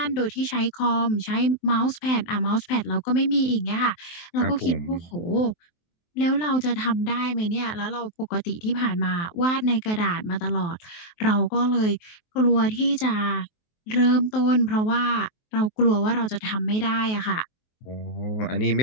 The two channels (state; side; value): late; right; 23 ms